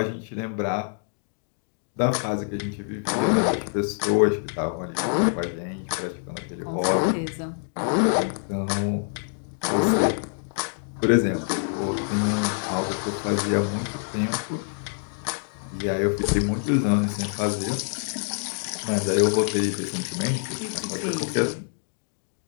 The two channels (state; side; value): silent; right; 61 dB below the other